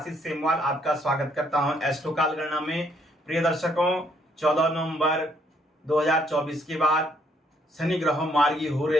सेमवाल आपका स्वागत करता हूं एस्ट्रो काल गणना में। प्रिय दर्शकों, 14 नवंबर 2024 के बाद शनि ग्रह मार्गी हो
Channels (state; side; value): normal; both; correlation 0.69